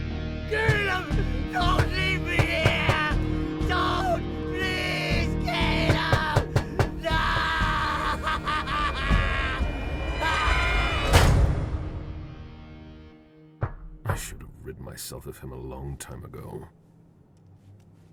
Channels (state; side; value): identical; both; correlation 1.00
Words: Caleb! Don't leave me here! Don't! Please, Caleb! No! I should have rid myself of him a long time ago.